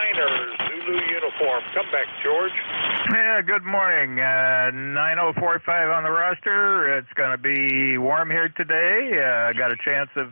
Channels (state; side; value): inverted; both; correlation -1.00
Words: Zulu uniform. Come back, George. Yeah, good morning. 9045 on the roster. It's going to be warm here today. Got a chance